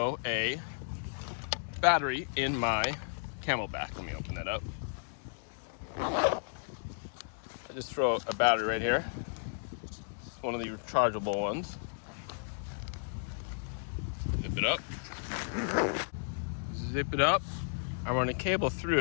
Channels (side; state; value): right; silent; digital silence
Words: a battery in my Camelback. Let me open that up. I just throw a battery right here, one of the rechargeable ones. Zip it up. Zip it up. I run a cable